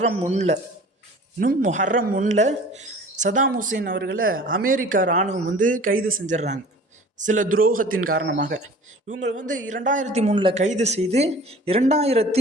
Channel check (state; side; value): normal; both; correlation 0.45